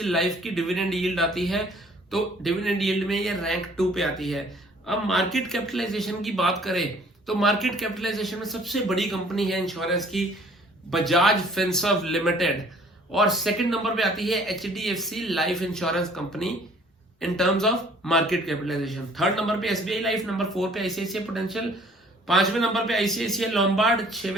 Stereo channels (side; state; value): both; normal; correlation 0.56